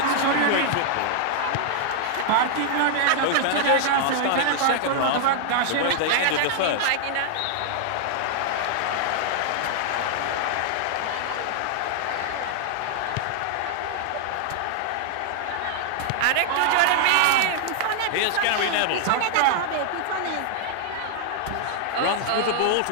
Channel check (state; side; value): different; both; correlation -0.01